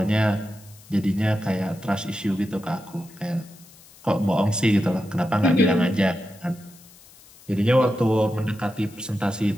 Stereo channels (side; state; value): left; noise; hiss, 24 dB below the sound